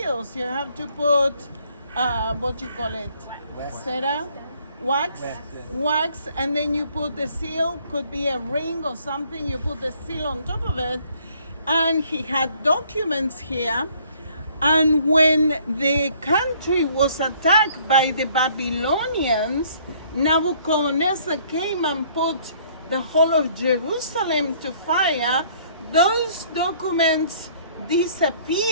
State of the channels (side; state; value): both; inverted; correlation -0.61